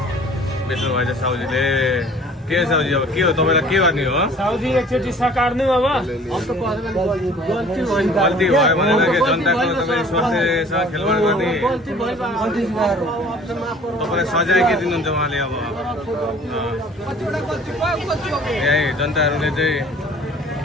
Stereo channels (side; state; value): both; normal; correlation 0.50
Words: बेच्नु भएछ साउजीले। के साउजी अब के हो तपाईँलाई के गर्ने हो? साउजी एकचोटि सकार्नु अब गल्ती भयो भनेर के जनताको तपाईँ स्वास्थ्यसँग खेलवाड गर्ने तपाईँलाई सजाय के दिनुहुन्छ उहाँले? अब यही जनताहरूले चाहिँ